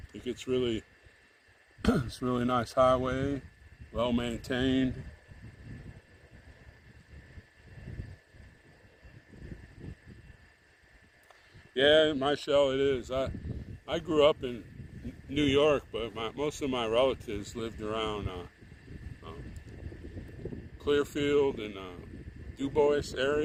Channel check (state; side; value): identical; both; correlation 1.00